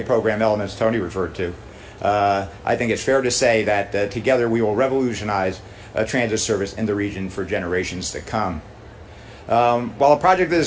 program elements Tony referred to, I think it's fair to say that together we will revolutionize transit service in the region for generations to come. While a project of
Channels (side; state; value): both; identical; correlation 1.00